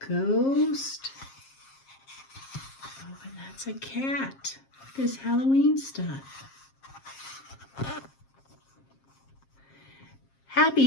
ghost? Oh, and that's a cat. This Halloween stuff. Happy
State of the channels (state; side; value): late; right; 7.5 ms